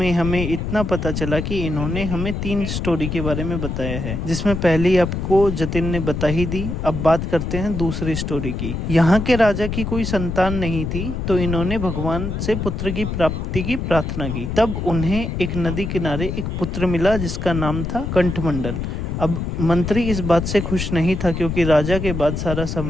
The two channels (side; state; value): left; noise; rumble, 3 dB below the sound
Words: हमें इतना पता चला कि इन्होंने हमें 3 स्टोरी के बारे में बताया है, जिसमें पहली आपको जतिन ने बता ही दी। अब बात करते हैं दूसरी स्टोरी की। यहाँ के राजा की कोई संतान नहीं थी, तो इन्होंने भगवान से पुत्र की प्राप्ति की प्रार्थना की। तब उन्हें एक नदी किनारे एक पुत्र मिला जिसका नाम था कंठमंडल। अब मंत्री इस बात से खुश नहीं था क्योंकि राजा के बाद सारा